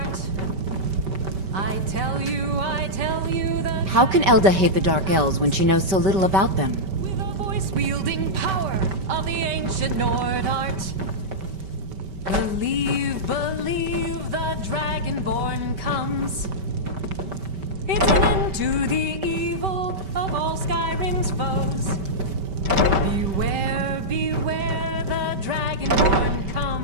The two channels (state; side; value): late; left; 5.2 ms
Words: I tell you that... How can Elda hate the Dark Elves when she knows so little about them? With a voice-wielding power of the ancient Nord art. Believe the Dragonborn comes. It's an end to the evil of all Skyrim's foes. Beware, the Dragonborn